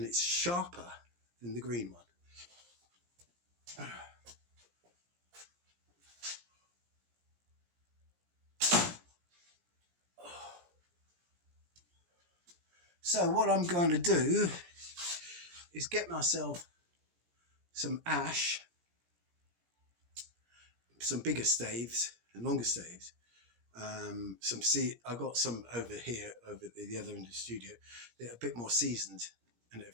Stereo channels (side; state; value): left; late; 17 ms